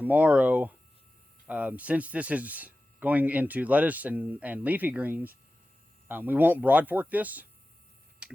since this is going into lettuce and leafy greens, we won't broad fork this,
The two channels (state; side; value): normal; both; correlation 0.95